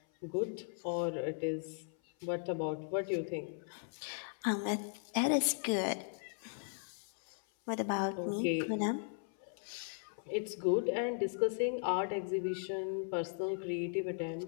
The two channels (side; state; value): right; silent; 53 dB below the other